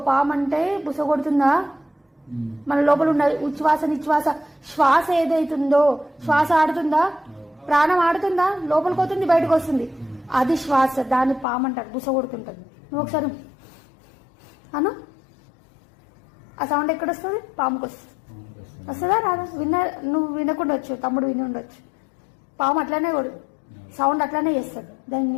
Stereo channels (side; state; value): right; drops out; at 11.5 s